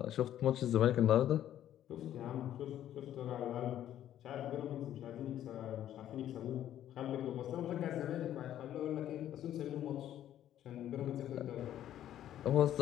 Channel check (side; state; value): right; quieter; 11.6 dB